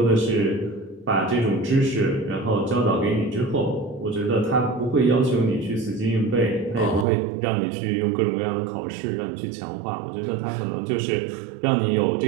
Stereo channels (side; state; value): left; drops out; at 7.1 s